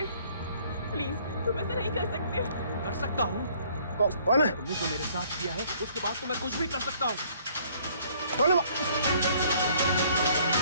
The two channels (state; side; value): inverted; both; correlation -0.60